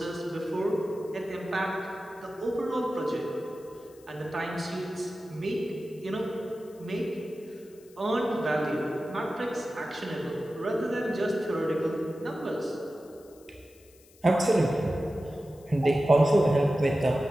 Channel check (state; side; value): noise; left; hiss, 27 dB below the sound